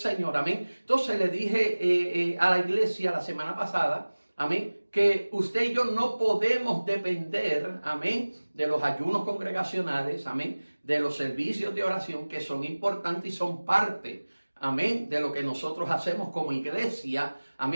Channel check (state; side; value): inverted; both; correlation -1.00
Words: amén. Entonces le dije a la iglesia la semana pasada, amén, que usted y yo no podemos depender, amén, de los ayunos congregacionales, amén, de los servicios de oración que son importantes y son parte, amén, de lo que nosotros hacemos como iglesia,